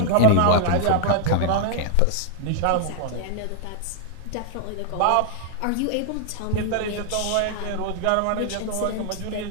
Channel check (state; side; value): different; both; correlation 0.00